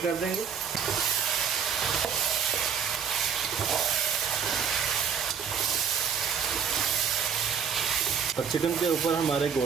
देंगे। अब चिकन के ऊपर हमारे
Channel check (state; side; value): quieter; left; 7.2 dB